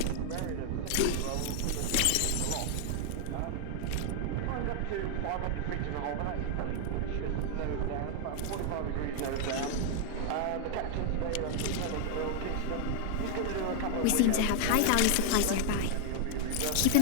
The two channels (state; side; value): different; both; correlation 0.00